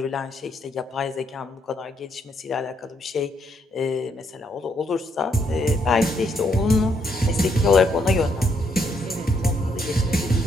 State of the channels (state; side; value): normal; both; correlation 0.74